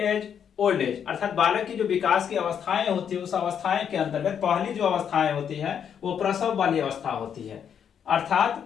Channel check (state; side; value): quieter; right; 8.1 dB